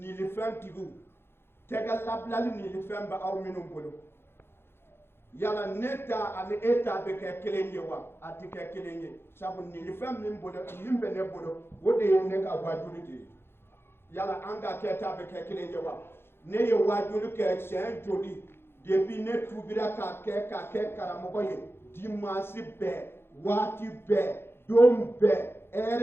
tɛgɛ labilali niilifɛn bɛ aw minnu bolo yala ne ta ani e ta bɛ kɛ kelen ye wa a tɛ kɛ kelen ye sabu niilifɛn min bɛ ne bolo o de ye ne ka wajuli de ye yala an ka kɛ ta bɛ kɛ kelen ye wa ne ye wajuli kɛ siɲɛ joli depuis ne tubira k'a kɛ karamɔgɔ ye dimanche bɛɛ waati bɛɛ don bɛɛ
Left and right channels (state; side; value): late; right; 0.11 ms